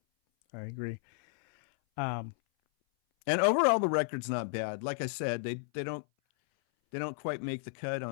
I agree. Um, and overall, the record's not bad. Like I said, they don't quite make the cut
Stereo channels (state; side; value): silent; right; 56 dB below the other